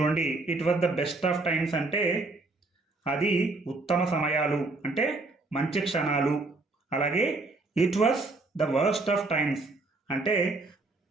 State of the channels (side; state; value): left; quieter; 3.3 dB